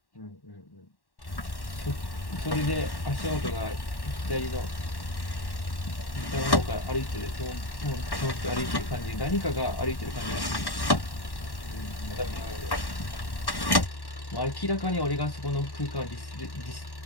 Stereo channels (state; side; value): late; right; 1.1 ms